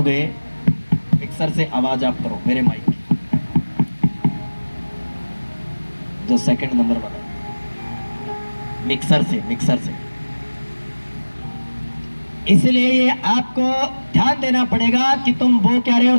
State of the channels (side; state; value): both; inverted; correlation -1.00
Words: मिक्सर से आवाज आप करो मेरे माइक की, जो सेकंड नंबर बना, मिक्सर से, मिक्सर से। इसलिए ये आपको ध्यान देना पड़ेगा कि तुम वो क्या रहे हो,